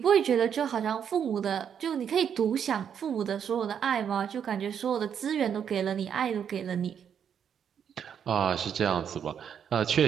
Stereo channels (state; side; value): quieter; left; 8.1 dB